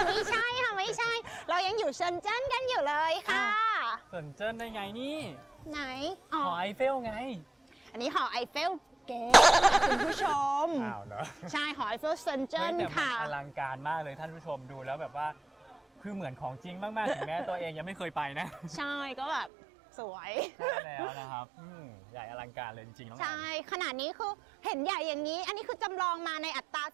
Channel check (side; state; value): left; drops out; at 19.5 s